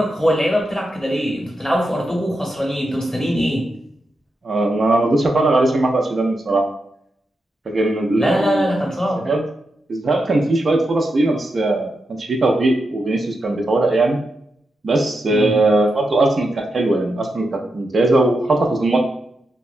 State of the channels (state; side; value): normal; both; correlation 0.87